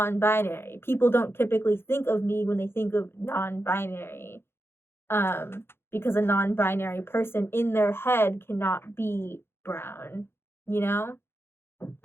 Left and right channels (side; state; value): right; late; 0.11 ms